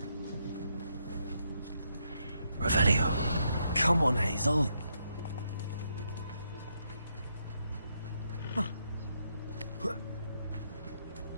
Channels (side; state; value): both; inverted; correlation -0.78